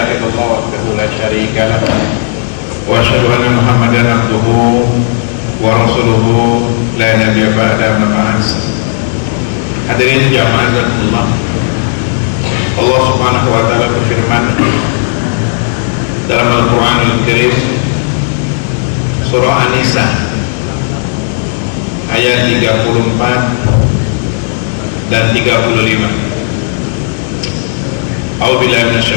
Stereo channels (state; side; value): silent; right; 64 dB below the other